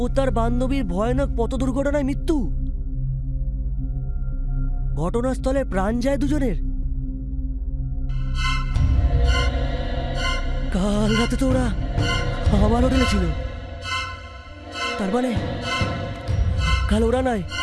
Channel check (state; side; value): identical; both; correlation 1.00